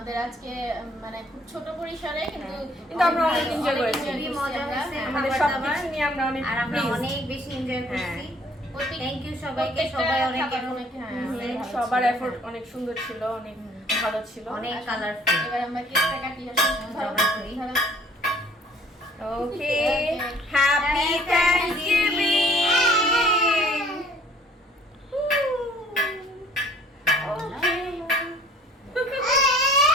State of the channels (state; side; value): normal; both; correlation 0.56